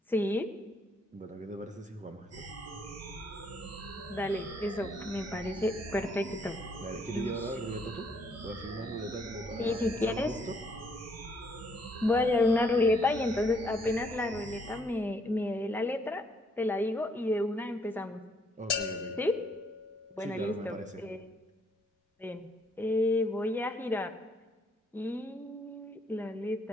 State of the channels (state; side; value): normal; both; correlation 0.68